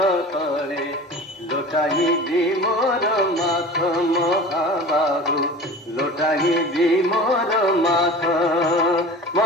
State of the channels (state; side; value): normal; both; correlation 0.37